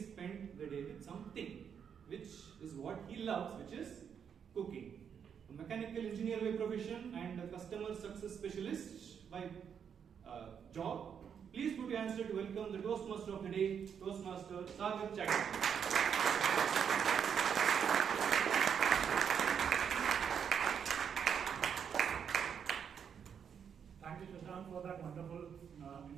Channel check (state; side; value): quieter; left; 7.6 dB